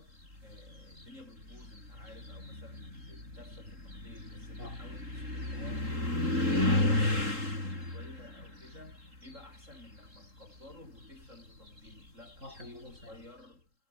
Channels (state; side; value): late; left; 3.7 ms